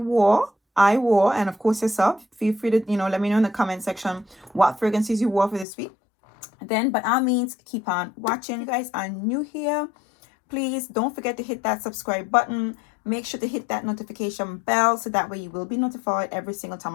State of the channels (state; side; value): drops out; right; at 5.7 s